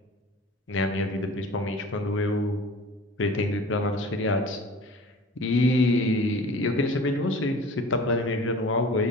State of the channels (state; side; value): normal; both; correlation 0.42